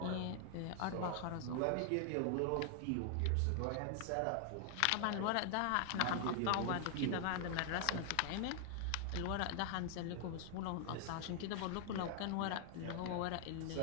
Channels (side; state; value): both; different; correlation 0.00